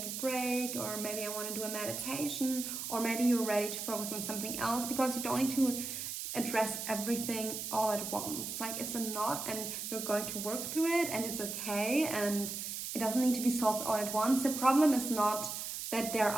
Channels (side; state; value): right; noise; hiss, 5 dB below the sound